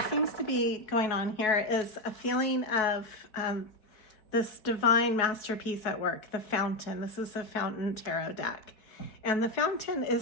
seems to be going on here is a feeling of this divine masterpiece at work, the Fountain. This is the Fountain Tarot deck, and the Fountain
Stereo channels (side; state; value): right; late; 4.7 ms